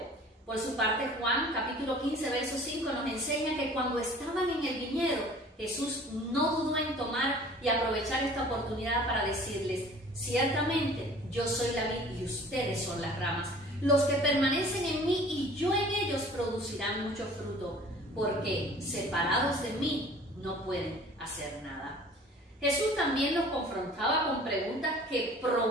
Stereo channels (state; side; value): normal; both; correlation 0.48